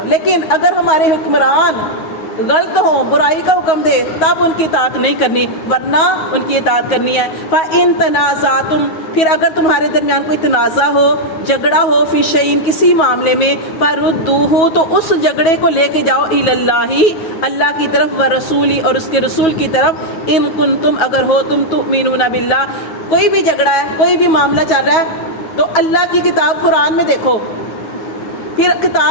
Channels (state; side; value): late; right; 9.3 ms